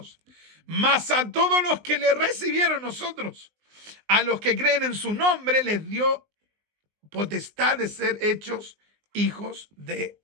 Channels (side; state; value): left; late; 19 ms